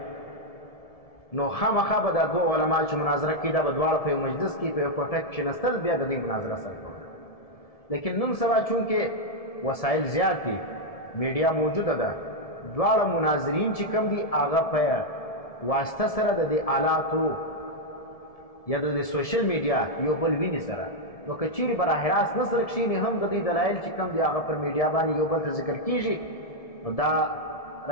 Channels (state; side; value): late; right; 1.7 ms